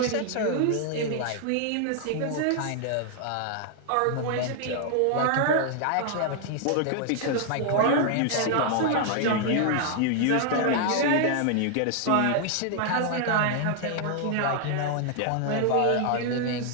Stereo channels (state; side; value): different; both; correlation 0.00